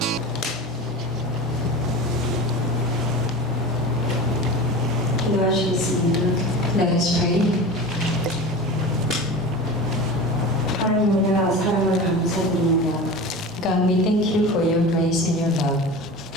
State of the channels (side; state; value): both; normal; correlation 0.32